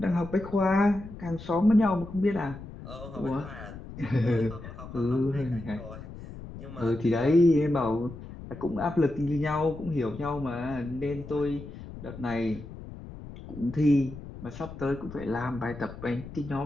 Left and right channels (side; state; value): left; noise; rumble, 13 dB below the sound